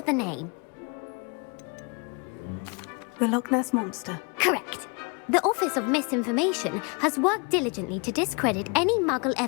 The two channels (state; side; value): quieter; right; 33.0 dB